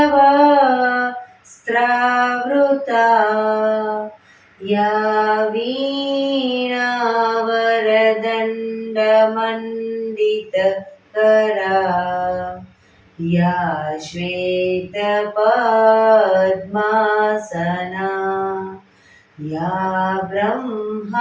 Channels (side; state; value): both; identical; correlation 1.00